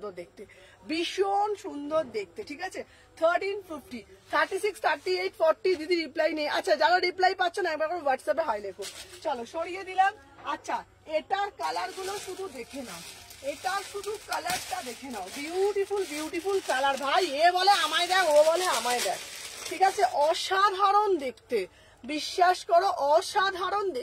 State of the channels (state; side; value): identical; both; correlation 1.00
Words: সুন্দর দেখতে, ঠিক আছে? 1350, 36, 38, 40। দিদি রিপ্লাই নেই। আচ্ছা যারা রিপ্লাই পাচ্ছ না একবার করে হোয়াটসঅ্যাপে হাই লেখো। চলো সরিয়ে দিলাম। আচ্ছা এটার কালার গুলো শুধু দেখে নাও, কালারটা দেখে নাও। বিউটিফুল কালার ভাই, এ বলে আমায় দেখ, ও বলে আমায় দেখ, ঠিক আছে? অসাধারণ দেখতে, বিশ্বাস করো অসাধারণ